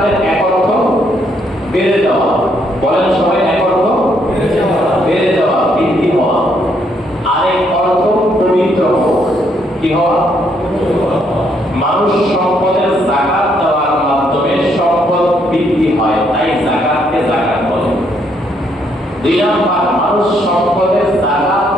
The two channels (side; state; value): both; normal; correlation 0.72